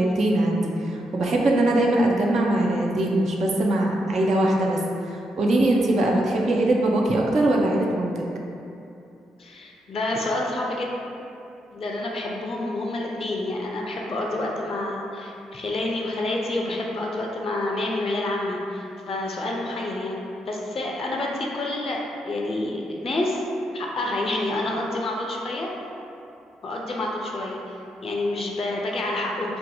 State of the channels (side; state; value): both; normal; correlation 0.80